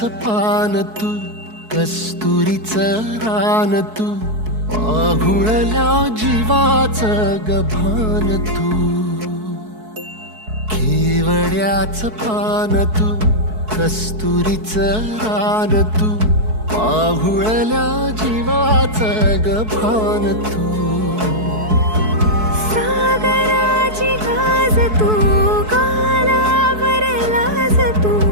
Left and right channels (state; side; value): late; left; 4.6 ms